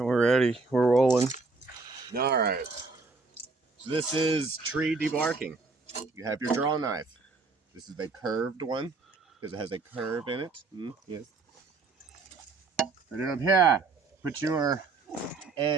we're ready. We're rolling. All right. So this is tree debarking. You have your draw knife. This is a curved one because it has a curve in it. Yes. Put it up here. Put your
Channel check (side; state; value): left; quieter; 4.0 dB